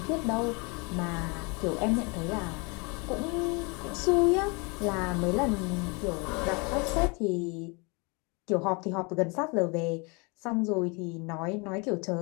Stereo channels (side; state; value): right; quieter; 30.3 dB